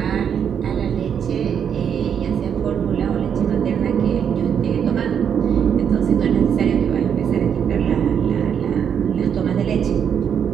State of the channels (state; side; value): quieter; left; 8.0 dB